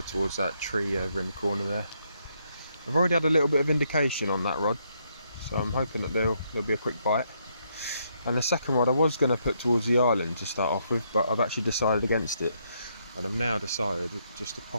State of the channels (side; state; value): both; inverted; correlation -0.75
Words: towards that tree over in the corner there. I've already had a little bit of indication on that rod, so I'm hoping that there'll be a quick bite. And the second rod I was going to put towards the island to start off with, but I've actually decided against it. And I've now decided just to